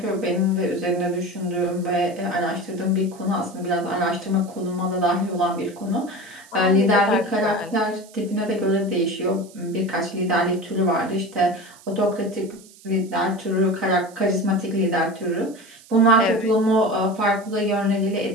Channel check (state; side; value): noise; right; hiss, 23 dB below the sound